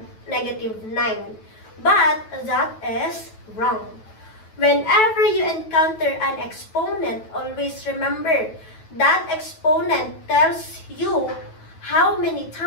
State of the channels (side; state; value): right; late; 9.2 ms